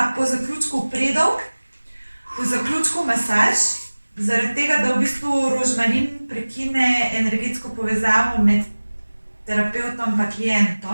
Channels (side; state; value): both; inverted; correlation -1.00